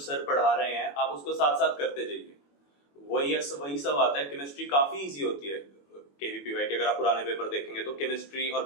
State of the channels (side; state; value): right; late; 21 ms